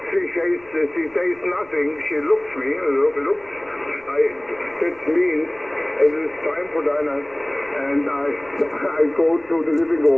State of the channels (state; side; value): noise; left; rumble, 29 dB below the sound